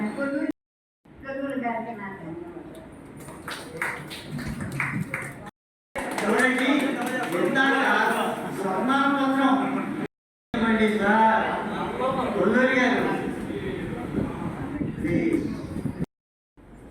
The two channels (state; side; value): identical; both; correlation 1.00